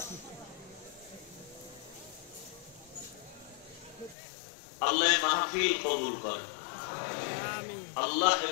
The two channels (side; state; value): right; drops out; at 4.2 s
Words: আল্লাহ মাহফিল কবুল করেন, আল্লাহ